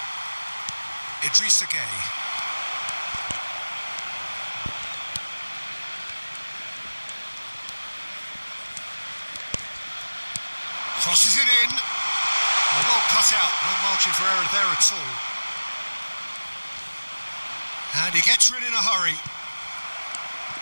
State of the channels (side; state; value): both; inverted; correlation -1.00